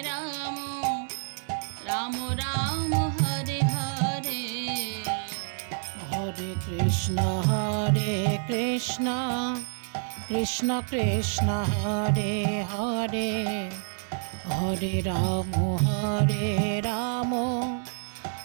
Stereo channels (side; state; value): left; silent; 59 dB below the other